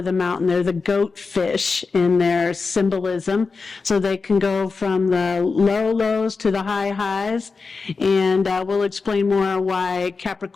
the mountain. They're the goat fish in their symbolism, so they can go from the low lows to the high highs, and we'll explain more why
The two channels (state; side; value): quieter; right; 4.5 dB